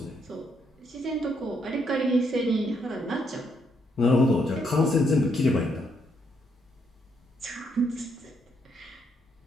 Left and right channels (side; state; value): both; normal; correlation 0.74